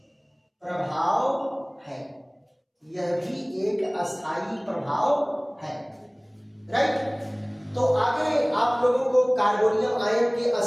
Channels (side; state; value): both; identical; correlation 1.00